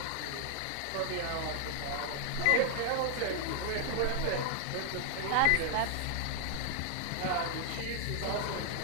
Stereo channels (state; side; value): different; both; correlation 0.00